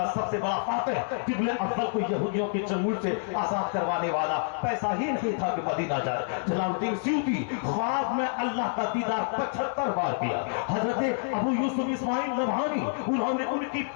سب سے بڑا فاتح قبل اول کو یہودیوں کے چنگل سے آزاد کروانے والا، پیسہ ہی نہیں تھا کہ مدینہ جائے۔ جلال الدین سیوطی خواب میں اللہ کا دیدار 75 بار کیا۔ حضرت ابو یوسف اسماعیل نبہانی انہوں نے ان کی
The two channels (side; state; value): right; silent; 59 dB below the other